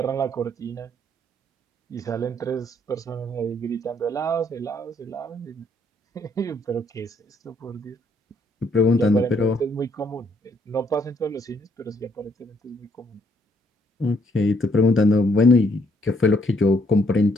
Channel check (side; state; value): both; normal; correlation 0.69